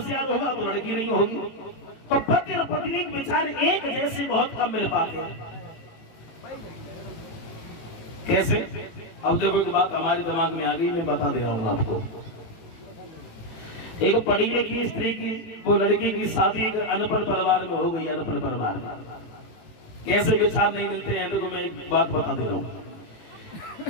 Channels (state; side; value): late; right; 18 ms